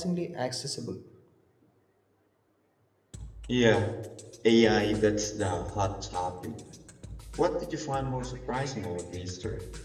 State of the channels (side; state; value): both; identical; correlation 1.00